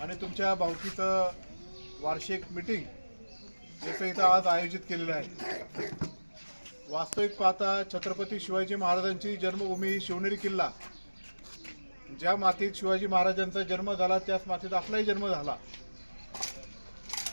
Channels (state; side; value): inverted; both; correlation -1.00